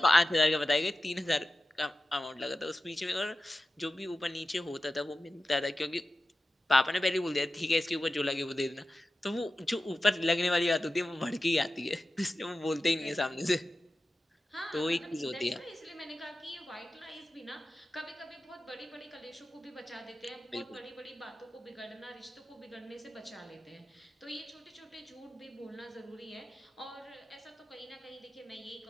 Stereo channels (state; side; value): normal; both; correlation 0.93